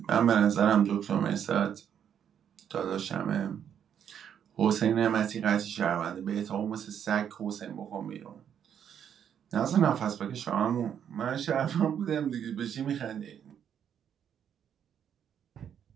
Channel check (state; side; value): quieter; left; 8.8 dB